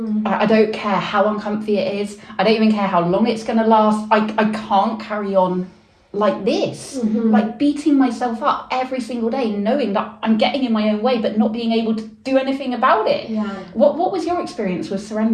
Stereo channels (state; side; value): identical; both; correlation 1.00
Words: I don't care how uncomfy it is. I don't even care how long it's going to last. I can't carry on like this, like beating myself up every single day, knowing that I'm getting in my own way, but not being able to do anything about it. What was your experience with